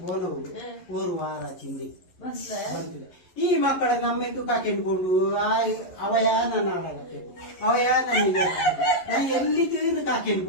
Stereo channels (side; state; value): right; late; 11 ms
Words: ಬೋನವು ಓರು ವಾರ ಚಿಂದಿ ಬಂತಿದೆ ಈ ಮಕ್ಕಳ ನಮ್ಮೆಟ್ಟು ಕಾಕೆಂಡ್ಕೊಂಡು ಅವಯ ನನ್ನ ಆಡಾಗತ್ತೆ ಅವಯ ನನಗೆ ನಾ ಎಲ್ಲಿದ್ದು ಇನ್ನು ಕಾಕೆಂಡ್